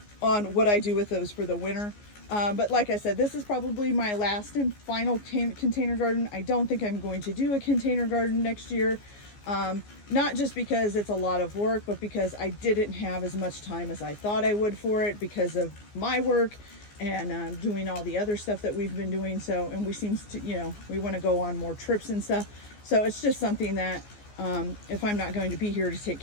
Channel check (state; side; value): late; right; 14 ms